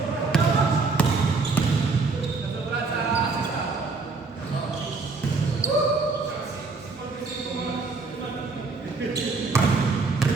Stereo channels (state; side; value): quieter; left; 4.1 dB